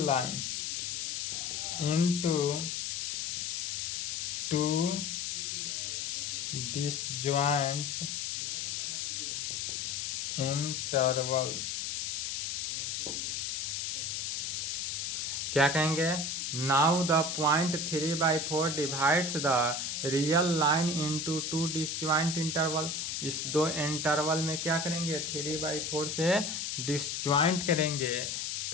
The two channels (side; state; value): left; noise; hiss, 2 dB below the sound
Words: line into 2 disjoint intervals। क्या कहेंगे, now the point 3/4 divides the real line into 2 disjoint interval. इस दो इंटरवल में क्या करेंगे 3/4 से डिसजॉइंट करेंगे,